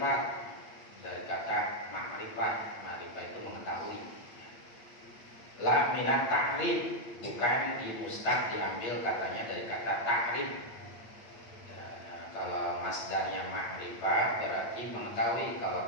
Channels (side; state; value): right; late; 9.2 ms